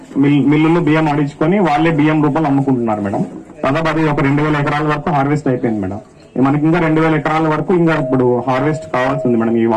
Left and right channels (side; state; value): both; identical; correlation 1.00